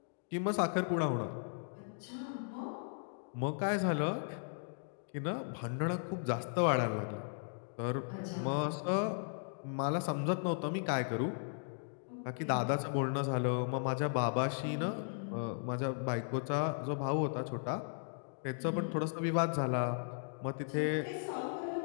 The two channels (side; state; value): right; silent; digital silence